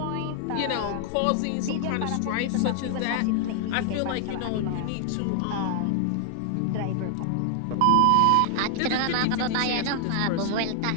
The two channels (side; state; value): both; different; correlation 0.00